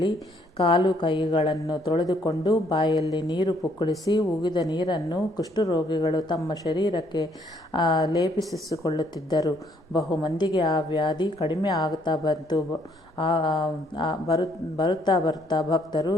ಕಾಲು ಕೈಗಳನ್ನು ತೊಳೆದುಕೊಂಡು ಬಾಯಲ್ಲಿ ನೀರು ಪುಕ್ಕಳಿಸಿ ಉಗಿದ ನೀರನ್ನು ಕುಷ್ಠರೋಗಿಗಳು ತಮ್ಮ ಶರೀರಕ್ಕೆ ಲೇಪಿಸಿಕೊಳ್ಳುತ್ತಿದ್ದರು. ಬಹುಮಂದಿಗೆ ಆ ವ್ಯಾಧಿ ಕಡಿಮೆ ಆಗುತ್ತಾ ಬಂತು. ಬರುತ್ತಾ ಭಕ್ತರು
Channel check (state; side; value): normal; both; correlation 0.67